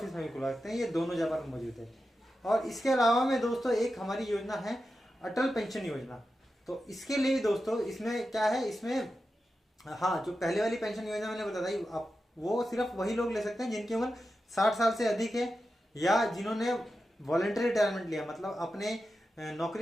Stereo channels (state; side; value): normal; both; correlation 0.91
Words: में भी खुलवा सकते हैं, ये दोनों जगह पर मौजूद है। और इसके अलावा में दोस्तों एक हमारी योजना है अटल पेंशन योजना। तो इसके लिए दोस्तों इसमें क्या है, इसमें हाँ जो पहले वाली पेंशन योजना मैंने बताई, आप वो सिर्फ वही लोग ले सकते हैं जिनकी उम्र 60 साल से अधिक है, या जिन्होंने वॉलंटरी रिटायरमेंट लिया, मतलब अपने